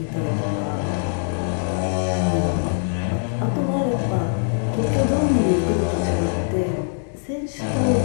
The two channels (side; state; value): right; silent; digital silence